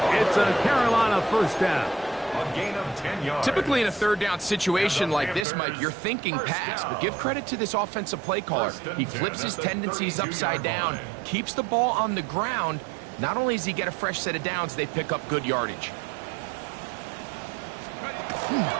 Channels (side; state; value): left; drops out; at 5.5 s